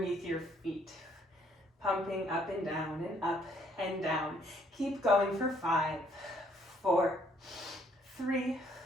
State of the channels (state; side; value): normal; both; correlation 0.66